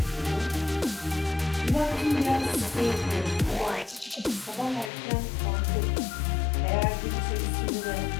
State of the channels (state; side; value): drops out; right; at 4.9 s